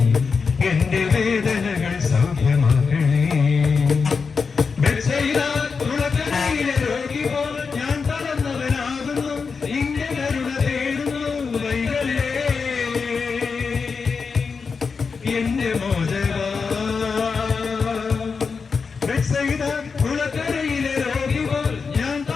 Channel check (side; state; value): right; quieter; 5.2 dB